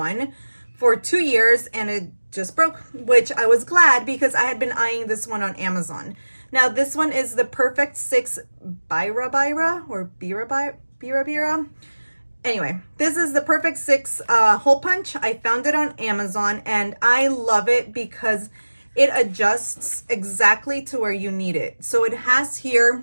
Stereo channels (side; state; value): both; inverted; correlation -1.00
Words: for 2 years, and it just broke, which I was glad because I had been eyeing this one on Amazon. Now this one is the Perfect 6 Bira or Bira. Anyway, this is the Perfect 6 hole punch. I found it on Amazon, and I love it because it adjusts exactly to where you need it. So it has